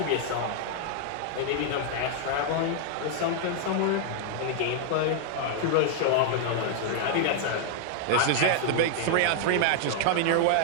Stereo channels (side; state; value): both; different; correlation 0.00